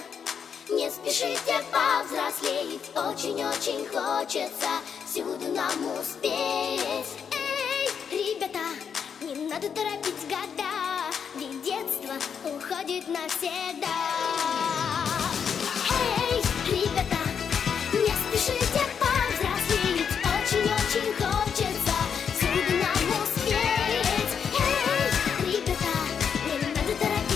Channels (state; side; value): quieter; right; 7.1 dB